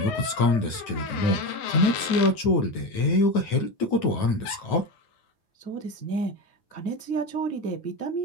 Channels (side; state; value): right; late; 9.3 ms